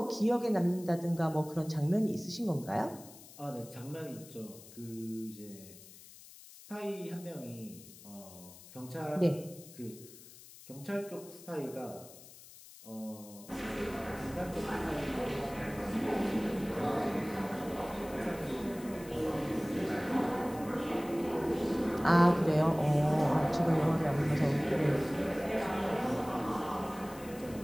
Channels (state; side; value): noise; left; hiss, 19 dB below the sound